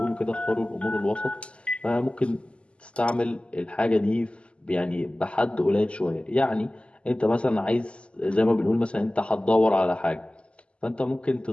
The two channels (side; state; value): right; late; 0.054 ms